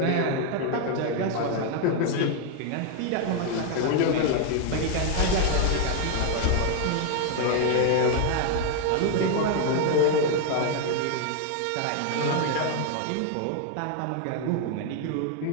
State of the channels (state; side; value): different; both; correlation 0.00